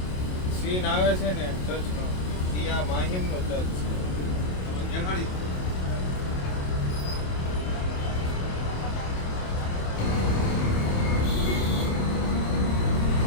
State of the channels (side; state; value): right; late; 27 ms